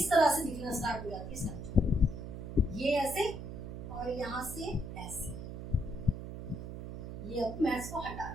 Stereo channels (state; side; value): noise; right; hum, 8 dB below the sound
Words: तरह से दिखना स्टार्ट हो जाती है स्ट्रक्चर, ये ऐसे और यहाँ से ऐसे। ये अब मैं इसको हटा